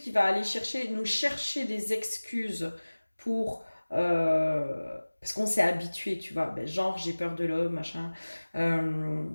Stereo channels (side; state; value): both; inverted; correlation -1.00